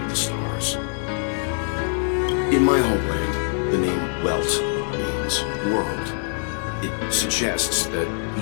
the stars. In my homeland, the name Welt means world. It suggests that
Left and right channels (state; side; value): silent; right; 63 dB below the other